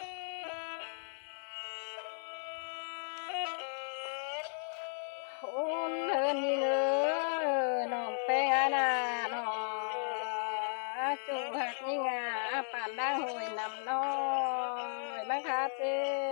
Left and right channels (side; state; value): right; silent; digital silence